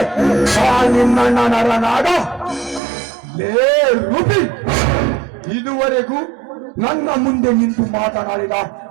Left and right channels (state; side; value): drops out; left; at 2.8 s